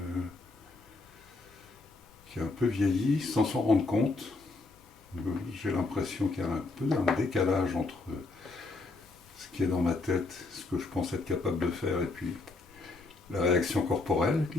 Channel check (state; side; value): quieter; right; 3.6 dB